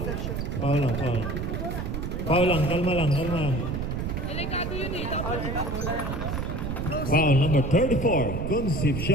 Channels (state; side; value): noise; right; rumble, 3 dB below the sound